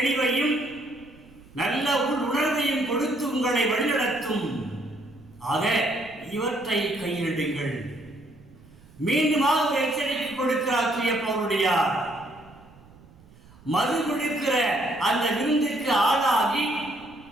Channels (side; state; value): right; noise; rumble, 24 dB below the sound